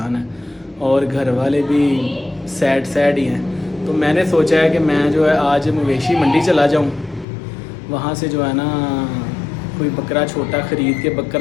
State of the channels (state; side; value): drops out; right; at 7.2 s